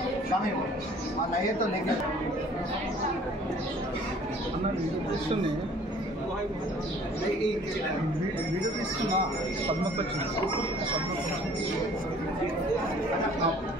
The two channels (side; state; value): both; normal; correlation 0.53